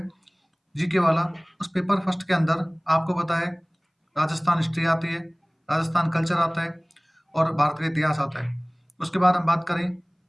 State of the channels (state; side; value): identical; both; correlation 1.00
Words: जीके वाला, उस पेपर फर्स्ट के अंदर आपको पता है राजस्थान हिस्ट्री आती है, राजस्थान कल्चर आता है और भारत का इतिहास आता है। उसके बाद हम बात करें